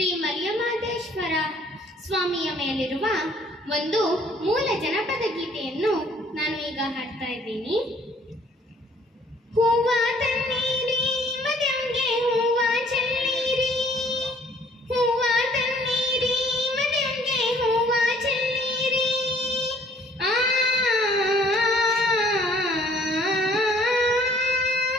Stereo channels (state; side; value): normal; both; correlation 0.58